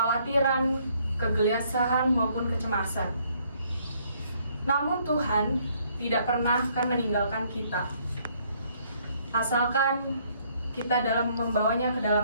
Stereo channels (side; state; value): both; inverted; correlation -0.65